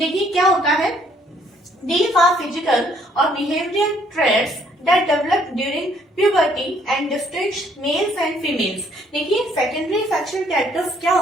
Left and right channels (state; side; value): normal; both; correlation 0.65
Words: क्या होता है, these are physical or behavioral traits that develop during puberty and distinguish males and females। देखिए सेकेंडरी सेक्शुअल कैरेक्टर्स क्या